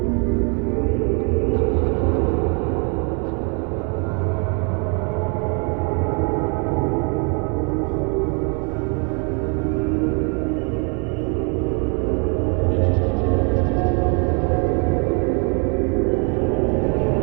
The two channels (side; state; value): left; quieter; 35.9 dB